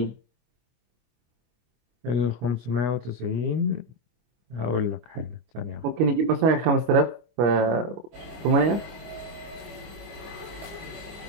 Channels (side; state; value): left; late; 25 ms